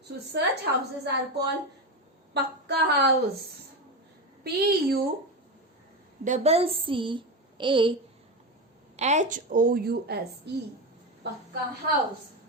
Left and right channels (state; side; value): normal; both; correlation 0.17